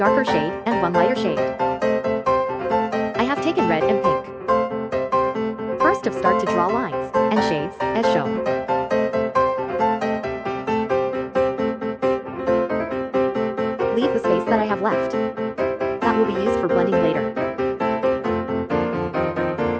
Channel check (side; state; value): both; identical; correlation 1.00